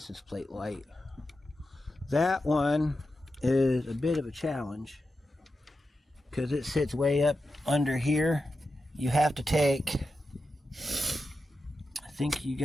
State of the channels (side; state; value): both; normal; correlation 0.90